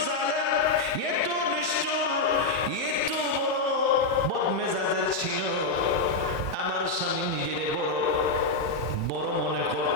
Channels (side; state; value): right; quieter; 3.3 dB